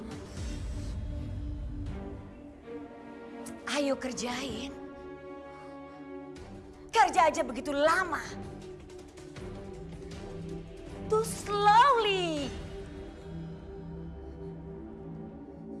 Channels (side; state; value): both; identical; correlation 1.00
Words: Ayo kerjain. Kerja aja begitu lama. Too slowly.